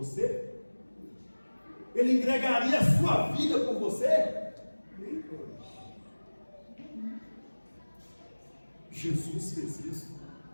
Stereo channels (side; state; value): both; inverted; correlation -1.00